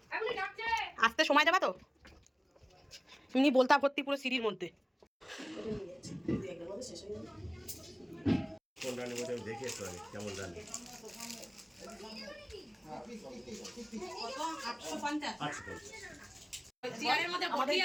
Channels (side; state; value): both; identical; correlation 1.00